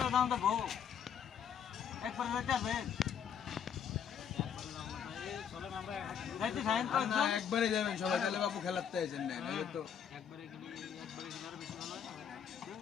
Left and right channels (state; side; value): quieter; right; 8.0 dB